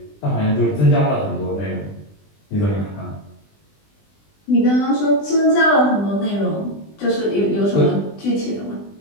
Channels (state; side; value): late; right; 20 ms